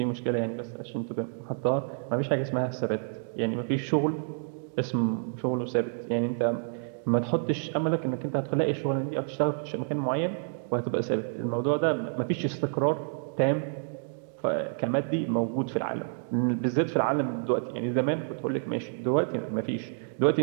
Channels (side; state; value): left; silent; digital silence